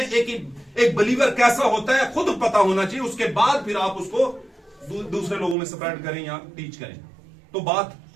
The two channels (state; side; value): drops out; left; at 5.6 s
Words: एक बिलीवर कैसा होता है खुद पता होना चाहिए। उसके बाद फिर आप उसको दूसरे लोगों में स्प्रेड करें या टीच करें, तो बात